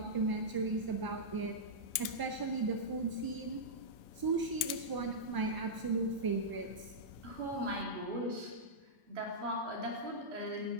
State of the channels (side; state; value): left; late; 1.0 ms